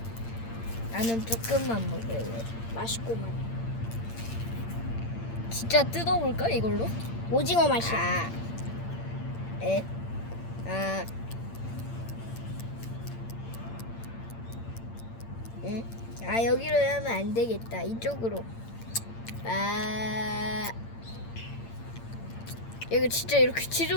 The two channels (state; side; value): late; right; 8.8 ms